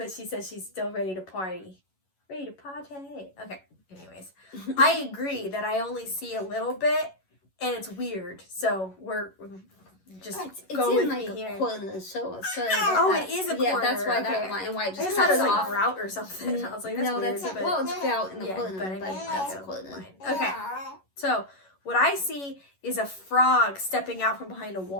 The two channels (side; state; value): right; late; 11 ms